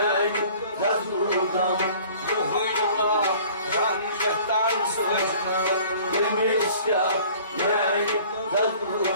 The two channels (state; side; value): inverted; both; correlation -0.50